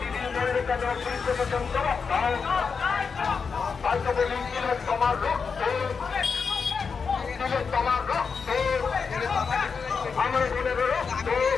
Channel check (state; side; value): quieter; right; 5.5 dB